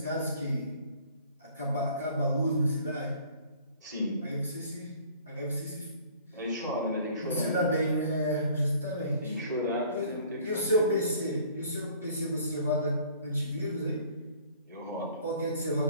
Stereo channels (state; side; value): inverted; both; correlation -0.53